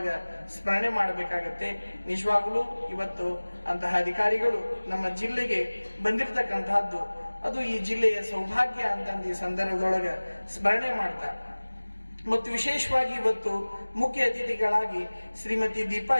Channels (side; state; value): both; inverted; correlation -1.00